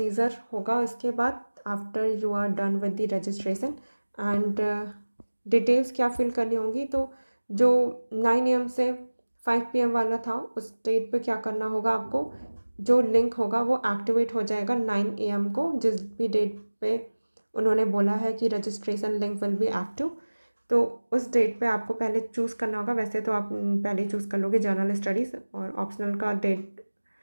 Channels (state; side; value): inverted; both; correlation -1.00